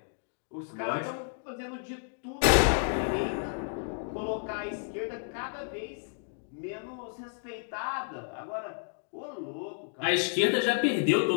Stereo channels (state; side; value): silent; right; digital silence